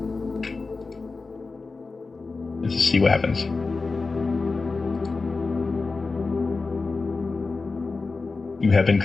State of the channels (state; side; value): quieter; right; 4.0 dB